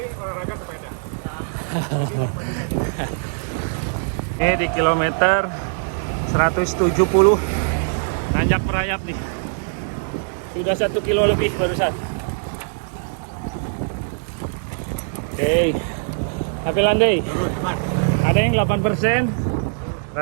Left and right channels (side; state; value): left; silent; digital silence